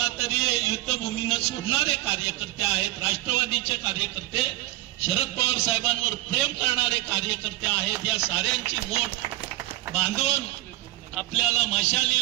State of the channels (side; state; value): left; quieter; 17.9 dB